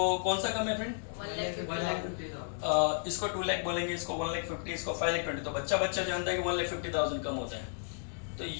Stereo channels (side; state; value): right; silent; digital silence